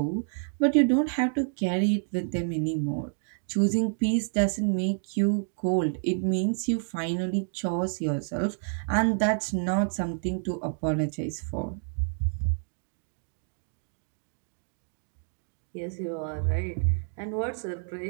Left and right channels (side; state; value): left; silent; digital silence